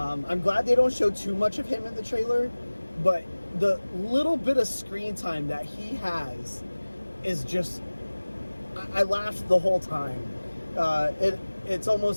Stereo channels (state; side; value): inverted; both; correlation -1.00